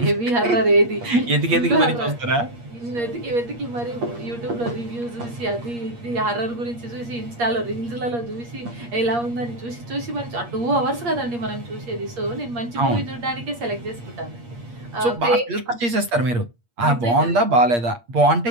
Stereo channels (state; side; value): late; left; 8.5 ms